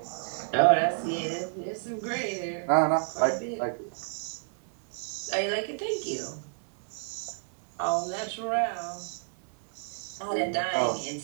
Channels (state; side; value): silent; left; 58 dB below the other